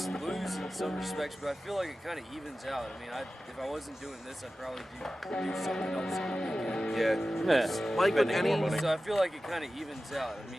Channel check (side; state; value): both; normal; correlation 0.95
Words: lose in some respects, but I feel like it kind of evens out. I mean, if I wasn't doing this, I'd probably do something else on the weekend. Yeah. Yeah. like with Spending any. more money. So I feel like it kind of evens out.